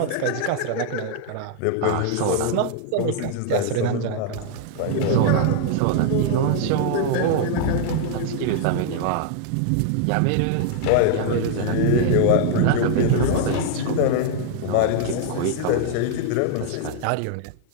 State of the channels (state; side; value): different; both; correlation 0.00